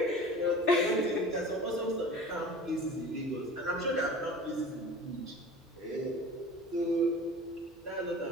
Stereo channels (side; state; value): both; normal; correlation 0.40